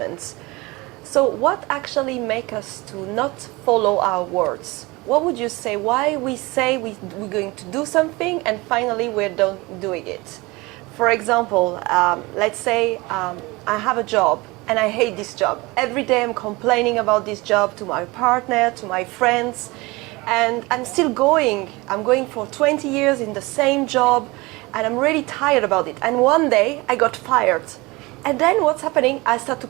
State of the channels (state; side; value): quieter; left; 23.3 dB